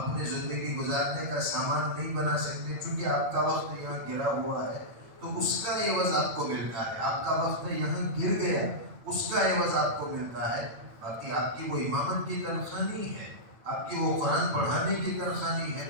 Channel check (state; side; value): late; left; 8.8 ms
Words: زندگی گزارنے کا سامان نہیں بنا سکتے، چونکہ آپ کا وقت یہاں گرا ہوا ہے تو اس کا عوض آپ کو ملتا ہے۔ آپ کا وقت یہاں گر گیا، اس کا عوض آپ کو ملتا ہے، باقی آپ کی وہ امامت کی تنخواہ نہیں ہے، آپ کی وہ قرآن پڑھانے کی تنخواہ نہیں ہے۔